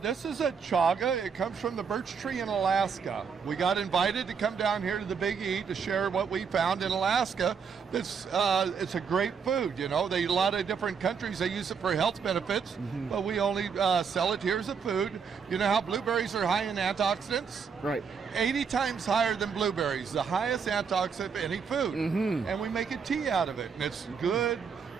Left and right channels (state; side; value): quieter; left; 6.2 dB